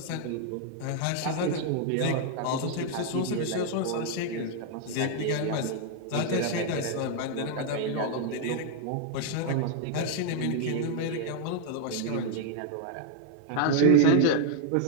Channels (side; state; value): both; different; correlation 0.00